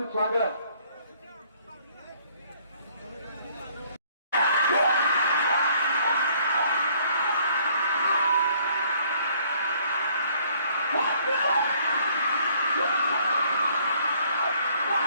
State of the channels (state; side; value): inverted; both; correlation -0.62